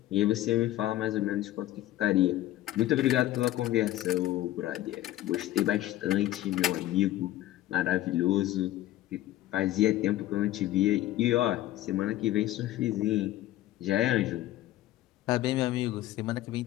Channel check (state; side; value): quieter; right; 14.8 dB